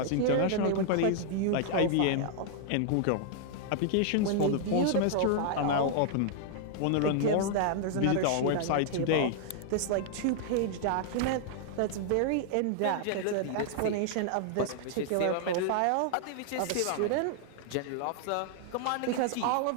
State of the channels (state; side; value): different; both; correlation -0.01